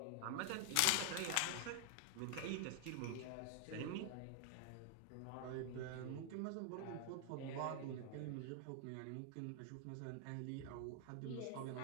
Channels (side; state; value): both; different; correlation 0.00